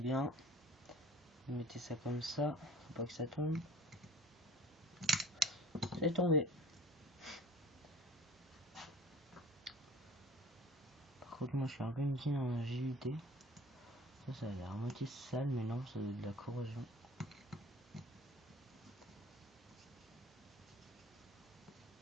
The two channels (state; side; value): normal; both; correlation 0.47